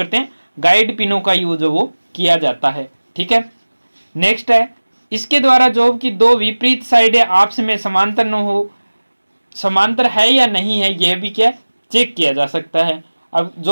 हैं? गाइड पिनों का यूज वो किया जाता है। ठीक है, नेक्स्ट है इसके द्वारा जॉब की दो विपरीत साइडें आपस में समांतर न हो, समांतर है या नहीं है, यह भी क्या चेक किया जा सकता है। अब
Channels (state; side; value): inverted; both; correlation -1.00